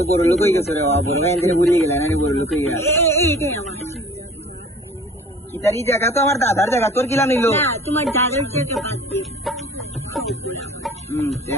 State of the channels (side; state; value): both; normal; correlation 0.47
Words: বড় লোক হয়ে গেছে রে বড় ভাই এখানে ঘুরিয়ে গেলেন আরে বড় লোক হয়ে গেল এইটাই আমার ইতারি জায়গা তো আমার দাদার জায়গা তোর কিলা নিল না তোমার দাদার জায়গা বাদ দিয়ে